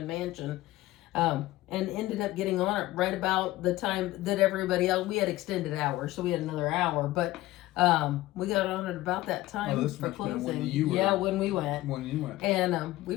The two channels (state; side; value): quieter; right; 16.9 dB